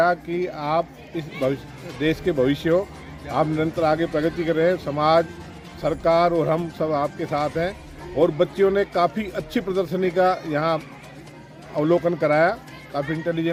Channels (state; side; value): identical; both; correlation 1.00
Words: कि आप इस देश के भविष्य हो, आप निरंतर आगे प्रगति कर रहे हैं, समाज, सरकार और हम सब आपके साथ हैं। और बच्चियों ने काफ़ी अच्छी प्रदर्शनी का यहाँ अवलोकन कराया। काफ़ी